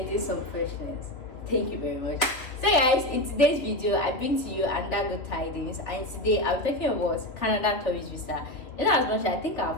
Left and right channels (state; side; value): late; right; 3.2 ms